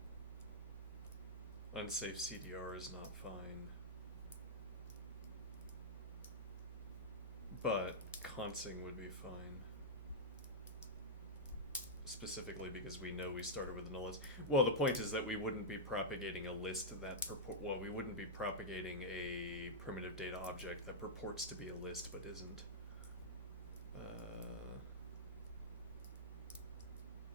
Unsafe CDR is not fine. But consing would be fine. Specifically because we know we started with a null list. Well, the point is that we wouldn't be propagating a list that well, we wouldn't be propagating a primitive data object that purports to be a list but isn't.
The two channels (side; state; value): both; normal; correlation -0.08